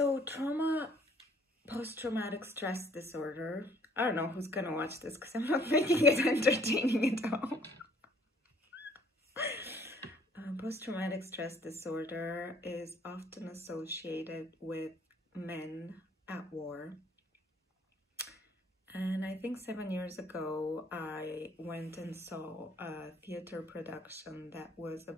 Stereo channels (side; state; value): both; normal; correlation 0.60